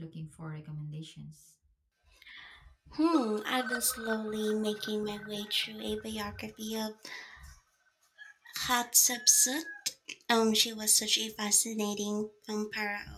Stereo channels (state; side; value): identical; both; correlation 1.00